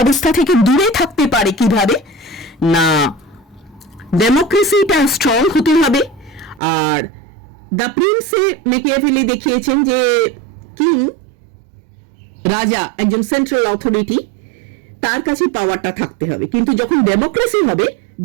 থেকে দূরে থাকতে পারে কিভাবে না, ডেমোক্রেসিটা স্ট্রং হতে হবে। আর দ্য প্রিন্সে মেকিয়াভেলি দেখিয়েছেন যে কিং, রাজা, একজন সেন্ট্রাল অথরিটি, তার কাছে পাওয়ারটা থাকতে হবে, কিন্তু যখন ডেমোক্রেসি হবে,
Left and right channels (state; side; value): drops out; left; at 6.6 s